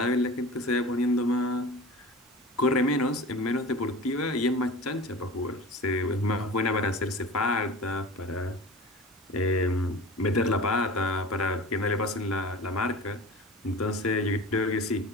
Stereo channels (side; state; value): both; normal; correlation 0.36